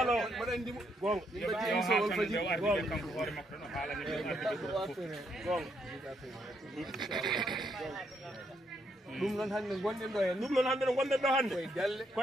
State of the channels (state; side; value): normal; both; correlation 0.75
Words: ɗum noon hannde gonɗen ɗo hen ɗum noon hannde no gonɗen ɗo hannde